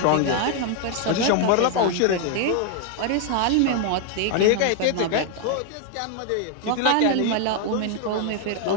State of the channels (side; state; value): both; different; correlation 0.00